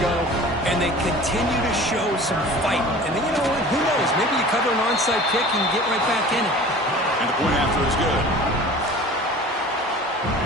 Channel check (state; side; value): normal; both; correlation 0.42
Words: and they continue to show some fight. And then, you know what? Who knows? Maybe you cover an onside kick and get right back in it. And the point after is good.